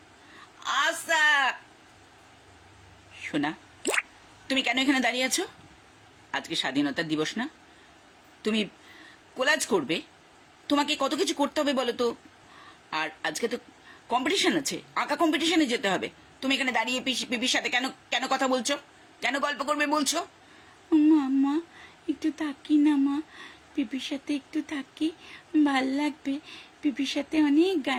আচ্ছা। সোনা, তুমি কেন এখানে দাঁড়িয়ে আছো? আজকে স্বাধীনতা দিবস না? তুমি কোলাজ করবে, তোমাকে কত কিছু করতে হবে বলো তো। আর আজকে তো কম্পিটিশন আছে, আঁকা কম্পিটিশনে যেতে হবে। তুমি এখানে দাঁড়িয়ে পিপির সাথে কেন কেন কথা বলছো? কেন গল্প করবে বলছো? মা, একটু থাকি না মা, পিপির সাথে একটু থাকি, ভাল লাগবে। পিপির সাথে অনেক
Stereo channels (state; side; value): identical; both; correlation 1.00